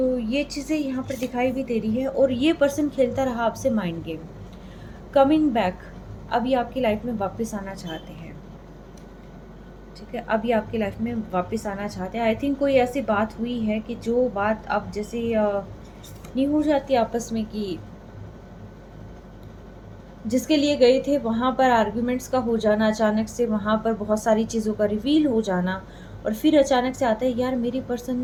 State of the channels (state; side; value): identical; both; correlation 1.00